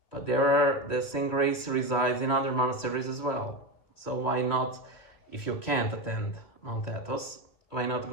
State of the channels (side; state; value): right; late; 3.1 ms